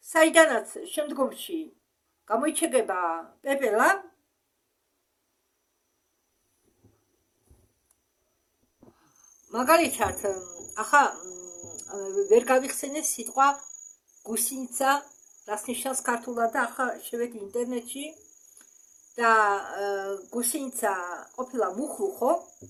საიდანაც შემდგომში გამოიჩეკება პეპელა, მაგალითად, ახლა ვერ გავიხსენე სიტყვა გუსინიცა, რას ნიშნავს ქართულად და ახლა შევედი ინტერნეტში და გუსინიცა ყოფილა მუხლუხო.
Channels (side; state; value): both; identical; correlation 1.00